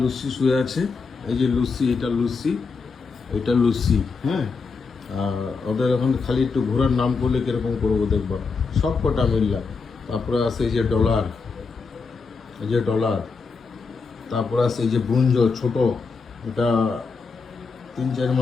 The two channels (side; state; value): right; quieter; 4.7 dB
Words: শুয়ে আছে, এই যে লুসি, এটা লুসি, হ্যাঁ। আর ওদের এখন খালি একটু ঘোরার নাম করলে কীরকম করবো দেখবা, সব কটা মিললা। তারপরে আছে এই যে ডলার, তারপরে আছে এই যে ব্রুঞ্জ ছোট, এটা 3-4